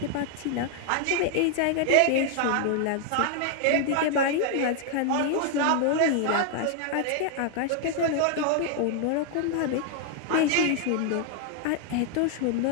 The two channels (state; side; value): different; both; correlation 0.00